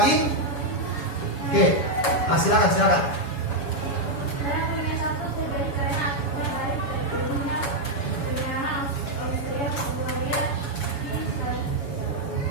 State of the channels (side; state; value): right; late; 7.1 ms